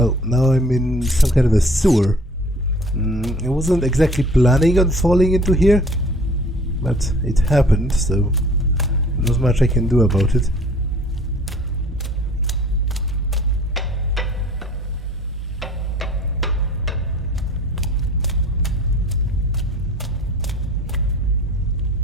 now I'm in some kind of a sewer. I wasn't exactly planning on falling into here, but it happened, so not much I can do about it.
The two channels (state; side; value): normal; both; correlation 0.51